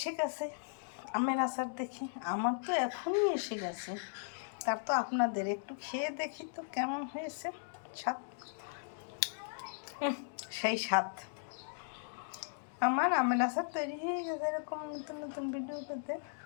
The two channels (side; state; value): right; silent; digital silence